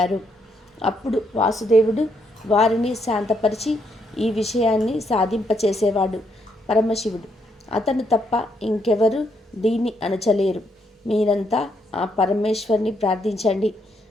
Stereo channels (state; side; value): normal; both; correlation 0.75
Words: అప్పుడు వాసుదేవుడు వారిని శాంతపరిచి ఈ విషయాన్ని సాధింపచేసేవాడు పరమశివుడు. అతను తప్ప ఇంకెవరు దీన్ని అణచలేరు. మీరంతా ఆ పరమేశ్వరుని ప్రార్థించండి